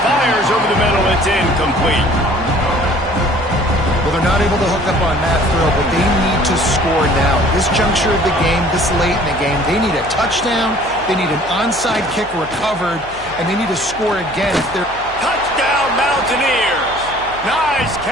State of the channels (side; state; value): left; noise; hum, 19 dB below the sound